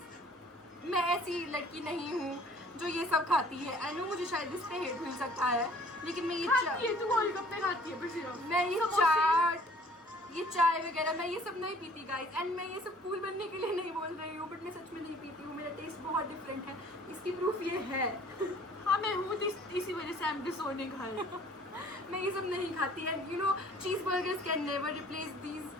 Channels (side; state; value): both; normal; correlation 0.53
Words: मैं ऐसी लड़की नहीं हूँ जो ये सब खाती है. आई नो मुझे शायद इस पे हेट मिल सकता है, लेकिन मैं ये तू गोलगप्पे खाती है सिर्फ. मैं ये चाट, ये चाय वगैरह मैं ये सब नहीं पीती गाइज. एंड मैं ये सब कूल बनने के लिए नहीं बोल रही हूँ, बट मैं सच में नहीं पीती हूँ. मेरा टेस्ट बहुत डिफरेंट है, इसकी प्रूफ ये है. हाँ मैं हूँ, इसी वजह से I'm disowning her. मैं ये सब नहीं खाती. एंड यू नो चीज burgers can never replace these,